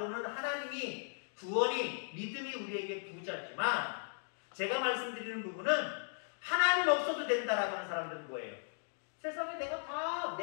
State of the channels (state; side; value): silent; right; digital silence